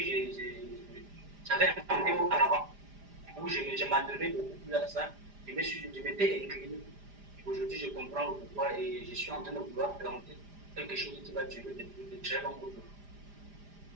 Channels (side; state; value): left; late; 5.0 ms